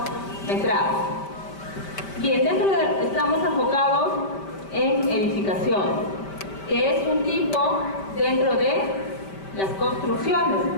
metrados. Bien, estamos enfocados en edificación, que es un tipo dentro de las construcciones,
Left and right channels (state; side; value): late; right; 5.1 ms